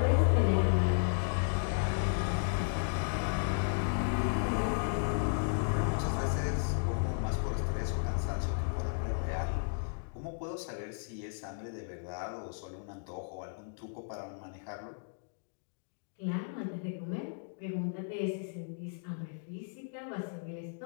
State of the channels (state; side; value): silent; right; digital silence